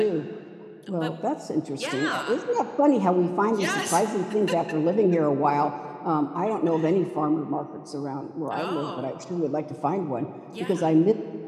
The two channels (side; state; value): both; identical; correlation 1.00